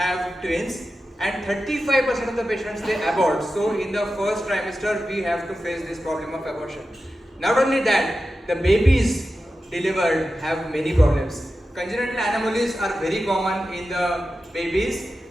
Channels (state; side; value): normal; both; correlation 0.92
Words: twins, and 35% of the patients they abort. So in the first trimester, we have to face this problem of abortion. Not only that, the babies delivered have many problems. Congenital anomalies are very common in the babies,